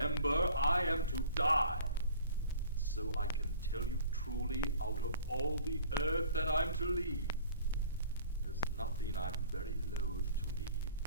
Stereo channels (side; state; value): both; inverted; correlation -0.48